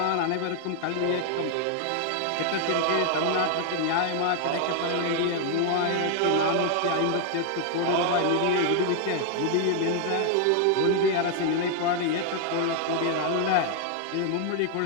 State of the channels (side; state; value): both; different; correlation 0.00